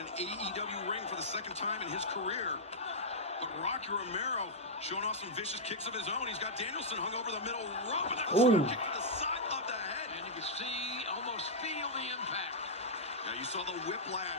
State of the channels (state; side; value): normal; both; correlation -0.09